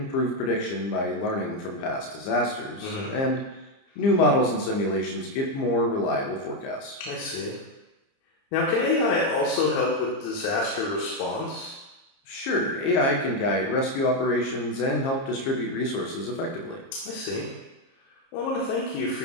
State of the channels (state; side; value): late; right; 30 ms